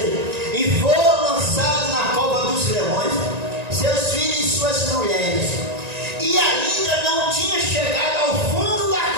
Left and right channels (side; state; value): left; late; 1.9 ms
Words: E foram lançados na cova dos leões, seus filhos e suas mulheres. E ainda não tinha chegado ao fundo da